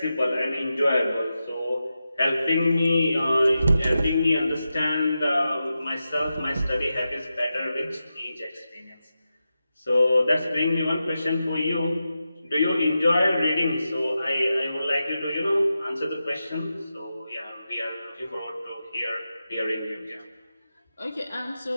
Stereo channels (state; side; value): inverted; both; correlation -0.90